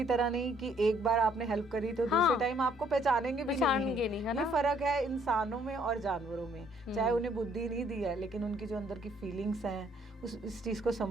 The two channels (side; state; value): both; normal; correlation 0.65